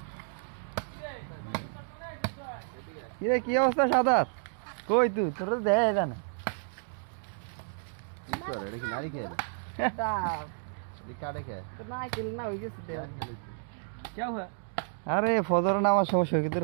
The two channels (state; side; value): silent; left; digital silence